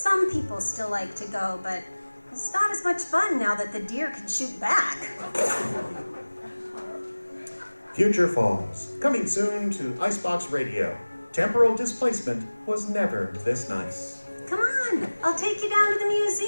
people still like to go, but it's not as much fun now that the deer can shoot back. Future Falls, coming soon to Icebox Radio. Temporal displacement was never this nice. Come on, I'll take you down to the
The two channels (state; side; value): inverted; both; correlation -1.00